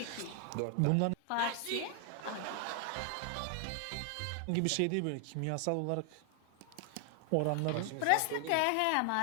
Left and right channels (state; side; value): different; both; correlation 0.00